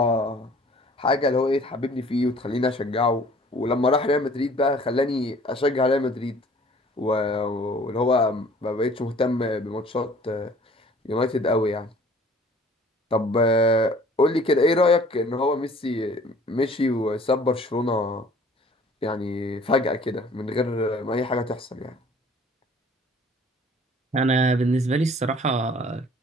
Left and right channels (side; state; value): both; normal; correlation 0.52